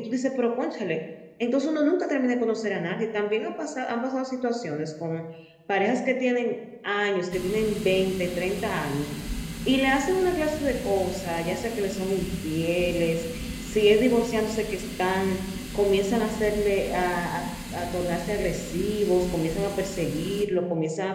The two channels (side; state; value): both; identical; correlation 1.00